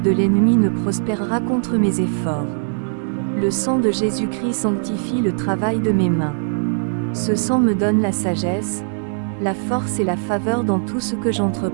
de l'ennemi ne prospérera contre mes efforts. Le sang de Jésus-Christ sanctifie le travail de mes mains. Ce sang me donne la sagesse, la force et la faveur dans tout ce que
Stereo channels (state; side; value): silent; left; 66 dB below the other